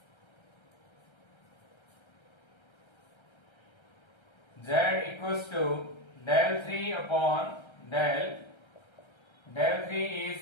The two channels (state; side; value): late; right; 1.3 ms